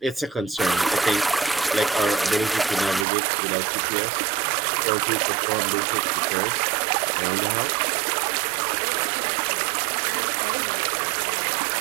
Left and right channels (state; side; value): drops out; left; at 3.1 s